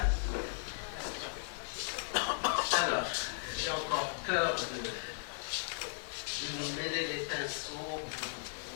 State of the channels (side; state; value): right; silent; digital silence